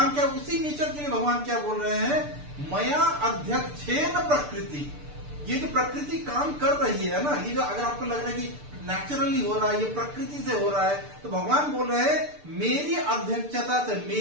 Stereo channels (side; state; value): left; late; 6.8 ms